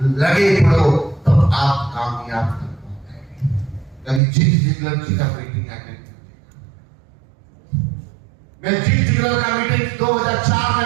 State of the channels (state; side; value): drops out; left; at 4.2 s